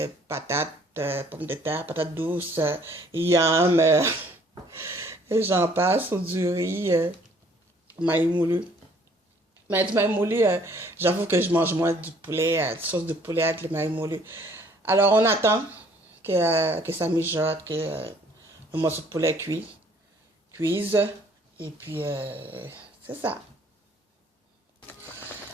Patates, pommes de terre, patates douces, yam, et j'en passe, ou du riz, maïs moulu. Mais du maïs moulu, j'avoue que je mange moins du poulet, sauce de poulet avec le maïs moulu. Alors, on attend que ça mijote, que le morceau de poulet cuise. Et puis, c'est ça.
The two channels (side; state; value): both; normal; correlation 0.59